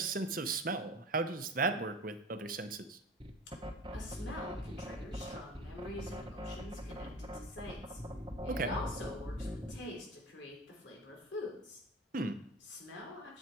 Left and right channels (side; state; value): both; normal; correlation 0.36